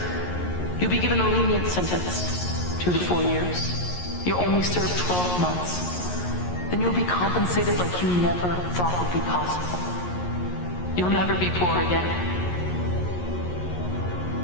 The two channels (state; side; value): late; right; 11 ms